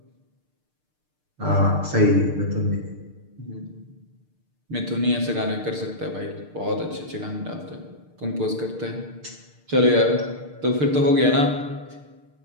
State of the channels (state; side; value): late; left; 6.6 ms